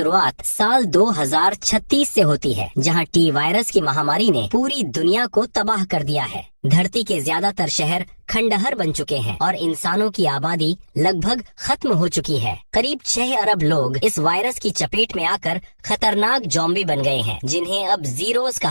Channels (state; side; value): inverted; both; correlation -1.00